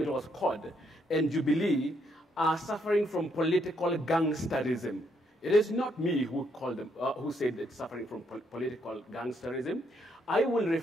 it was COD, and Jubilee are suffering from political gangsterism. It is not me who called them, who said it's suffering from political gangsterism. I will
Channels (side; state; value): both; normal; correlation 0.74